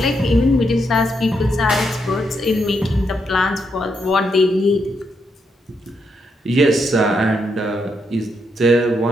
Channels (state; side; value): normal; both; correlation 0.79